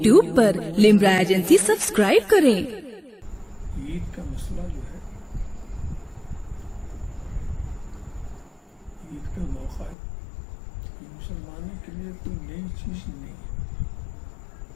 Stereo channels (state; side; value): drops out; right; at 10.0 s